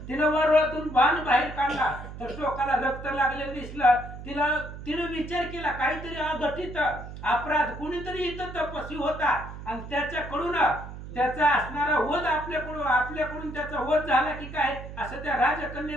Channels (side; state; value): right; noise; hum, 11 dB below the sound